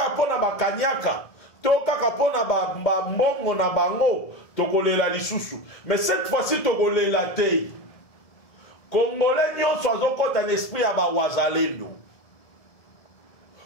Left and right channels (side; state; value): right; late; 1.7 ms